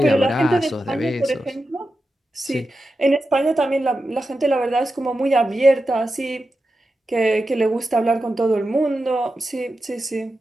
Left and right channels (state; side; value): normal; both; correlation 0.90